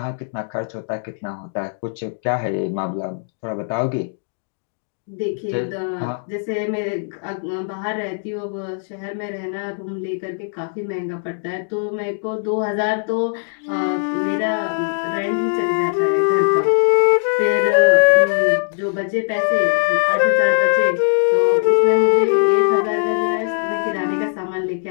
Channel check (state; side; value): silent; right; digital silence